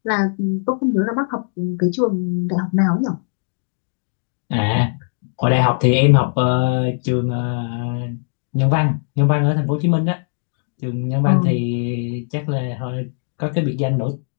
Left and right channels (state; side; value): silent; right; digital silence